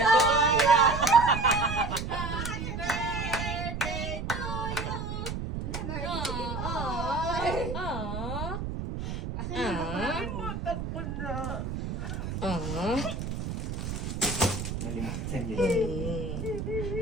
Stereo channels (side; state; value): right; noise; rumble, 4 dB below the sound